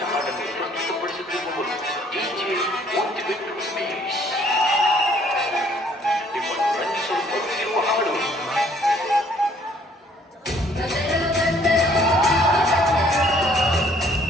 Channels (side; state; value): both; normal; correlation 0.61